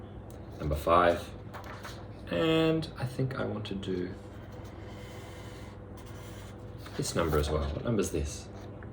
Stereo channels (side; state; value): both; identical; correlation 1.00